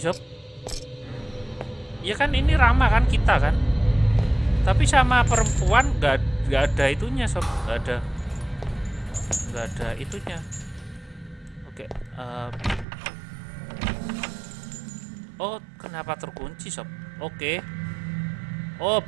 sob. Ya kan ini Rama kan, kita kan. Tapi sama perempuan nggak ada itunya, sob. Nggak ada itunya. Oke. Oh, kenapa terkunci, sob? Oke. Oh,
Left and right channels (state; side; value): drops out; left; at 12.9 s